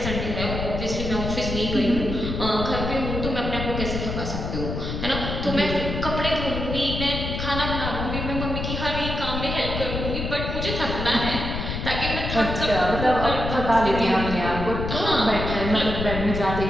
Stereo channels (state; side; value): noise; left; rumble, 4 dB below the sound